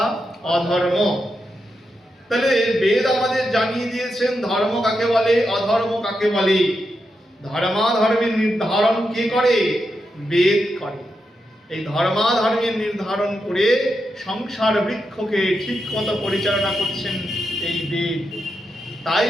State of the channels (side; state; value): both; normal; correlation 0.86